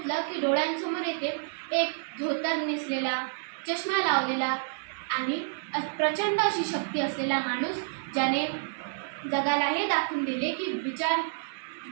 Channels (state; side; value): silent; left; digital silence